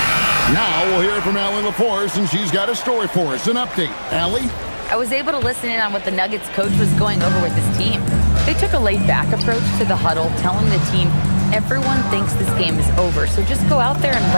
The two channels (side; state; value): both; inverted; correlation -1.00